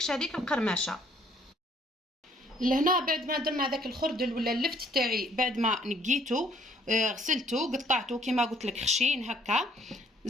هذيك القرمشه. لهنا بعد ما درنا هذاك الخردل ولا اللفت تاعي، بعد ما نقيته غسلته قطعته كما قلت لك خشين هكا.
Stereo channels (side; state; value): both; normal; correlation 0.62